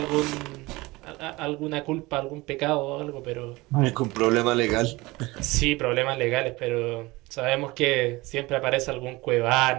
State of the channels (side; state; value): left; quieter; 21.8 dB